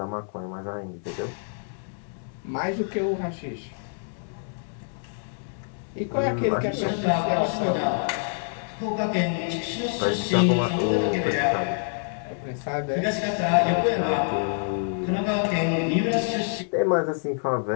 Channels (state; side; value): silent; right; digital silence